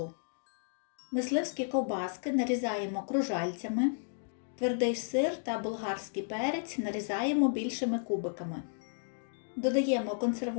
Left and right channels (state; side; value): silent; right; digital silence